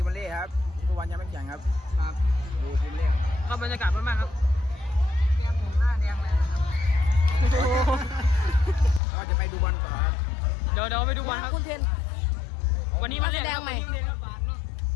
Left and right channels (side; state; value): right; drops out; at 9.0 s